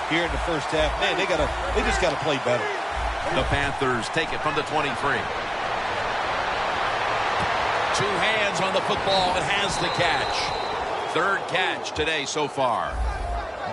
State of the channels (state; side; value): identical; both; correlation 1.00